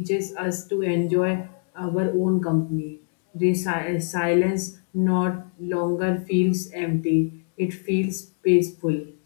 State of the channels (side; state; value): right; silent; digital silence